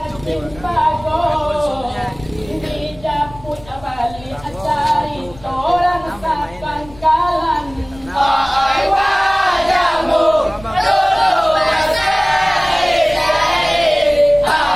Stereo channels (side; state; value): left; noise; rumble, 20 dB below the sound